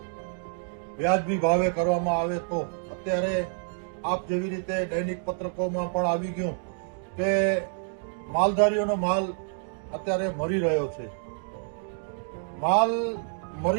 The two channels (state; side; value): silent; left; 59 dB below the other